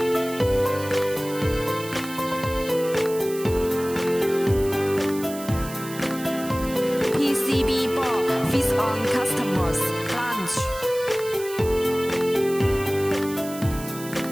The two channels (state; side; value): noise; right; hiss, 14 dB below the sound